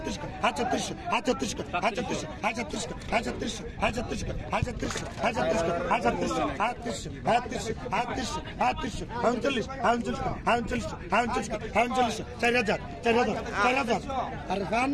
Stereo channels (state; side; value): identical; both; correlation 1.00